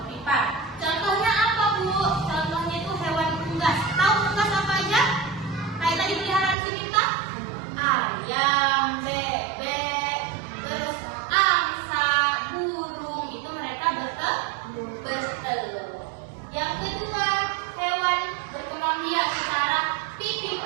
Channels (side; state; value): left; drops out; at 6.6 s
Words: Contohnya apa Bu? Contohnya itu hewan unggas. Tahu unggas apa aja? Kayak tadi peliharaan si Mita? Ayam, bebek, terus angsa, burung. Itu mereka bertelur. Yang kedua, hewan berkembang biak secara